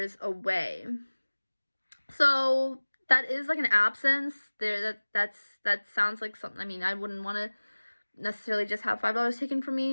away. So that is like an absence there. That sounds like something. I mean, I wouldn't want to necessarily just have $5 taken from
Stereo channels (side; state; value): both; inverted; correlation -1.00